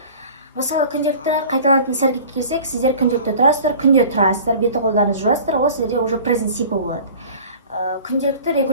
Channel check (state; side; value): inverted; both; correlation -0.43